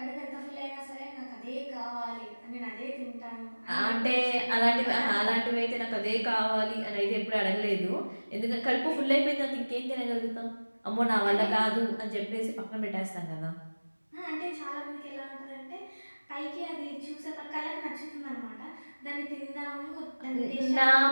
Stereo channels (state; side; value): inverted; both; correlation -1.00